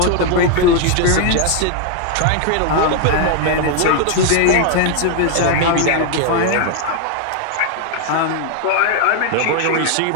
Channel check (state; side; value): different; both; correlation 0.00